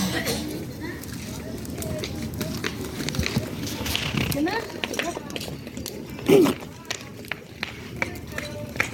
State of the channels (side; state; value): both; identical; correlation 1.00